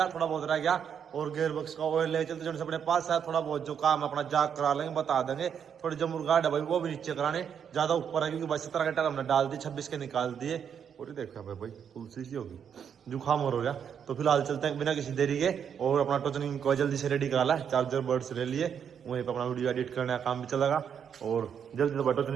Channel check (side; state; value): left; quieter; 7.9 dB